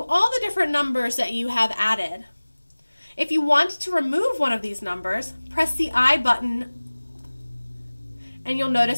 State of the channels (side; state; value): both; inverted; correlation -1.00